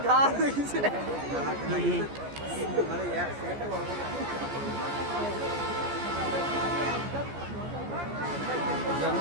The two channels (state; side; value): late; left; 14 ms